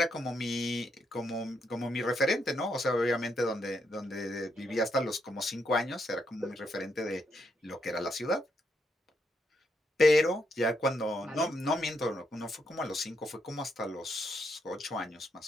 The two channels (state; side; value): normal; both; correlation 0.78